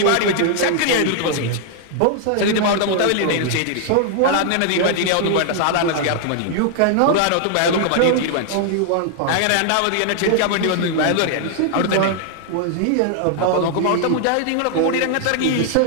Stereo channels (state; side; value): different; both; correlation 0.00